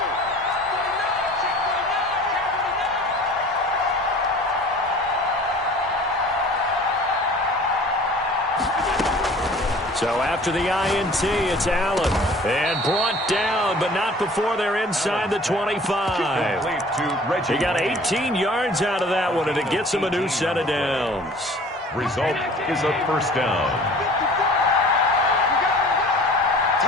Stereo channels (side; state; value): both; normal; correlation 0.47